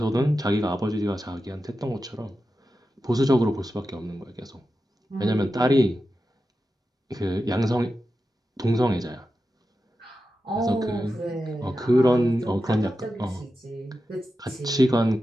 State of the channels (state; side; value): normal; both; correlation 0.91